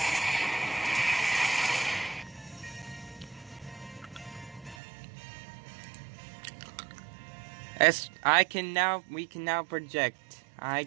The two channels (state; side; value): drops out; left; at 4.8 s